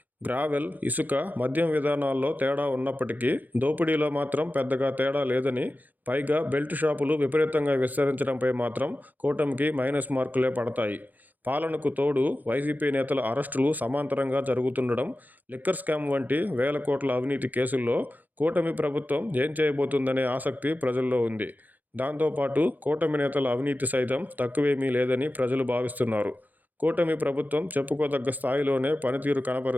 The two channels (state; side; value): late; left; 0.083 ms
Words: గ్రావెల్, ఇసుక, మద్యం విధానాల్లో తేడా ఉన్నప్పటికీ దోపిడీలో మాత్రం పెద్దగా తేడా లేదని, పైగా బెల్ట్ షాపులు విపరీతంగా విస్తరించడంపై మాత్రం కూటమికి మైనస్ మార్కులే పడతాయి. పాలనకు తోడు వైసీపీ నేతల అరెస్టులు సమాంతరంగా జరుగుతుండడం, లిక్కర్ స్కామ్ వంటి వేల కోట్ల అవినీతి కేసుల్లో కూటమి ప్రభుత్వం ఏం చేయబోతుందనే ఆసక్తి ప్రజల్లో ఉంది. దాంతోపాటు కూటమి నేతల అవినీతి సైతం తక్కువేమీ లేదని ప్రజలు భావిస్తున్నారు. కూటమి ప్రభుత్వం చెప్పుకోదగ్గ స్థాయిలోనే పనితీరు